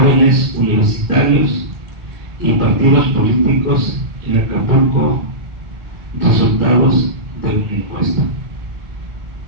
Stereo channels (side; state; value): left; late; 1.9 ms